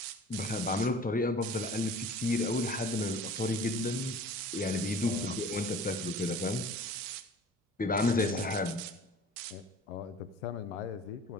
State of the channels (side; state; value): both; normal; correlation 0.45